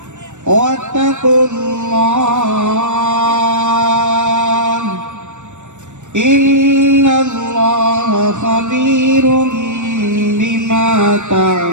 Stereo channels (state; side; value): late; left; 0.84 ms